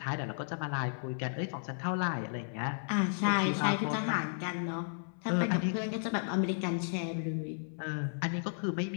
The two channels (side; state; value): right; silent; 55 dB below the other